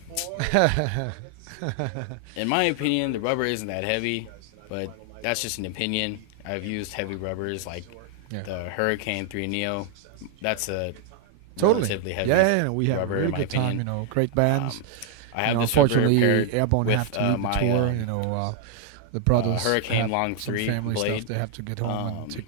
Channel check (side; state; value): both; different; correlation 0.00